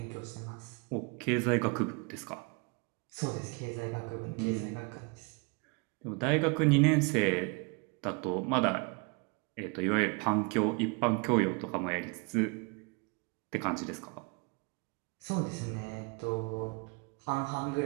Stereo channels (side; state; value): left; quieter; 31.8 dB